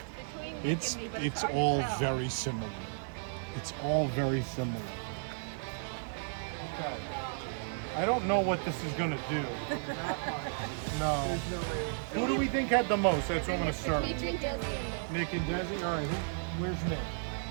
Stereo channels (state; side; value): silent; left; digital silence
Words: Between Nick and me, but It's hard to all tell. very similar. It's all very similar. Okay. I don't know what this is gonna do. No. There's no way. Who do we think had the most? That's what I'm gonna start with. Between Desi and Nick and Desi? All right, where's Nick?